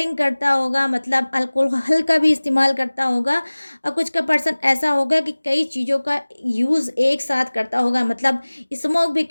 करता होगा, मतलब अल्कोहल का भी इस्तेमाल करता होगा। और कुछ का पर्सन ऐसा होगा कि कई चीज़ों का यूज़ एक साथ करता होगा, मतलब स्मोक भी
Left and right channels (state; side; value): inverted; both; correlation -1.00